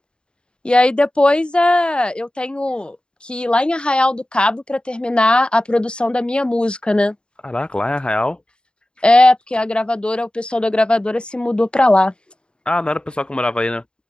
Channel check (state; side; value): late; right; 0.051 ms